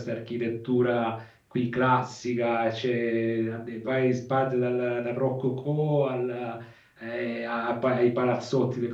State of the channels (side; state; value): both; identical; correlation 1.00